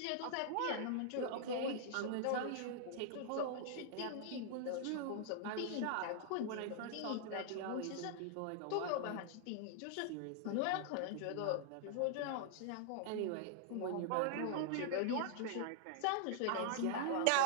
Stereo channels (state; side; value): different; both; correlation -0.01